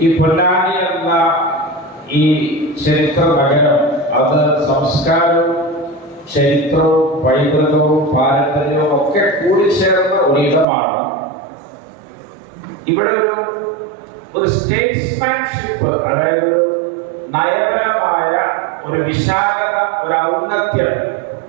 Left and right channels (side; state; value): left; drops out; at 10.7 s